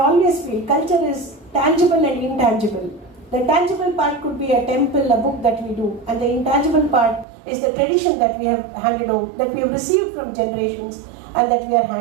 always feel culture is tangible and intangible. The tangible part could be a temple, a book that we do, and the intangible part is the tradition that we have handed over, that we have received from generations and that we are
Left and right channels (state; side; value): drops out; left; at 7.2 s